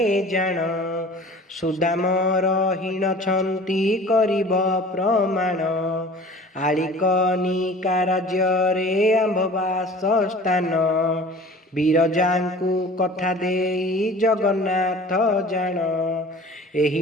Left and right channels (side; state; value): both; normal; correlation 0.44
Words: जान सुदाम रहीन छंती करिब प्रमाण आलिकनिका राज्ୟରେ आंभवास स्थान ବିରଜାଙ୍କୁ କଥା ଦେଇ ଜଗନ୍ନାଥ ଜାଣ ଏହି